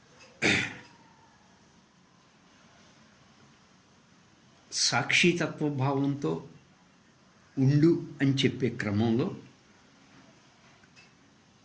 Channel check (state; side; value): identical; both; correlation 1.00